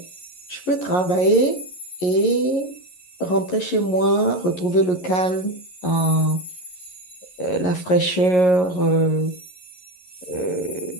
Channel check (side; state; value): right; late; 11 ms